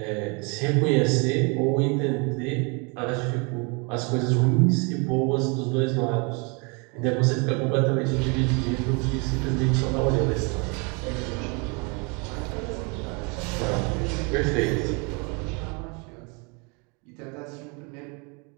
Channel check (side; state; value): left; quieter; 32.1 dB